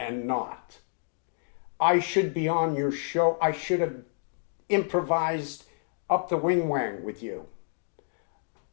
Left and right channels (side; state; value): right; silent; digital silence